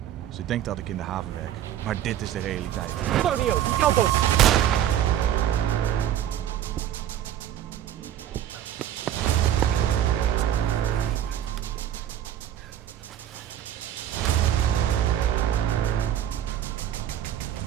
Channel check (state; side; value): quieter; left; 11.0 dB